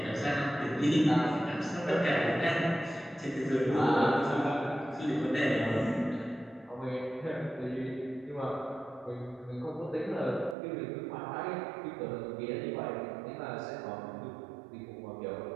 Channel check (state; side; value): drops out; left; at 10.6 s